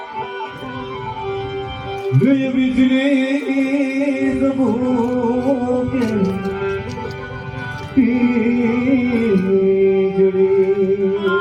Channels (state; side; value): identical; both; correlation 1.00